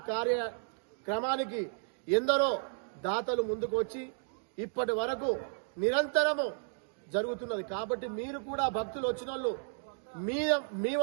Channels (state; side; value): silent; left; digital silence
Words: కార్యక్రమానికి ఎందరో దాతలు ముందుకు వచ్చి ఇప్పటి వరకు నిరంతరము జరుగుతున్నది. కాబట్టి మీరు కూడా భక్తులు వచ్చిన వాళ్ళు మీ